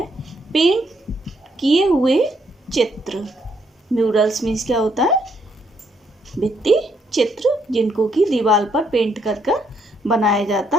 पेंट किए हुए चित्र। म्यूरल्स मीन्स क्या होता है? भित्ति चित्र, जिनको कि दीवार पर पेंट कर कर बनाया जाता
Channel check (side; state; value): both; normal; correlation 0.73